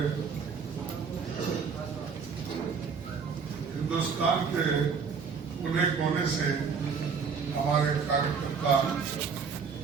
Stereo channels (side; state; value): left; quieter; 5.9 dB